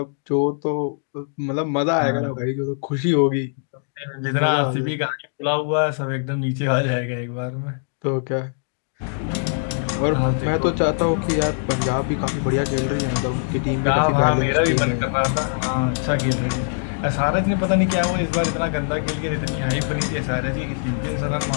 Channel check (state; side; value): silent; right; digital silence